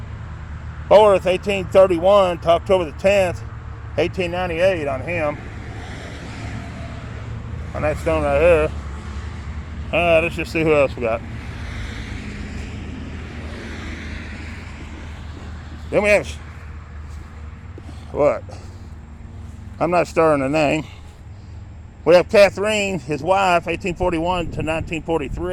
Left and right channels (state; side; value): identical; both; correlation 1.00